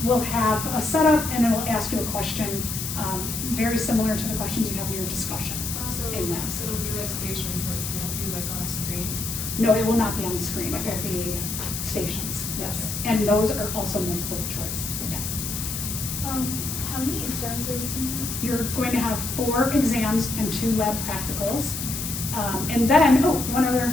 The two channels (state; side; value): noise; left; hiss, 5 dB below the sound